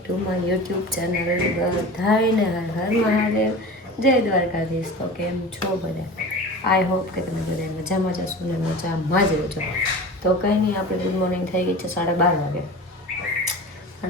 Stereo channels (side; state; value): both; normal; correlation 0.34